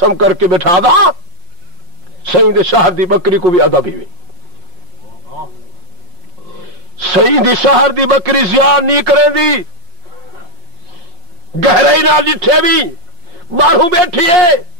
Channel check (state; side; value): late; left; 5.4 ms